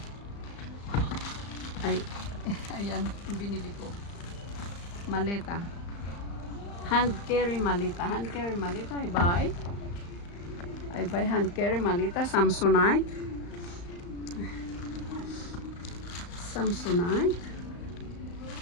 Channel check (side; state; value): right; late; 35 ms